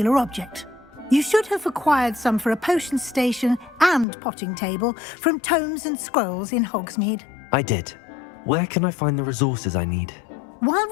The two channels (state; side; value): drops out; right; at 4.0 s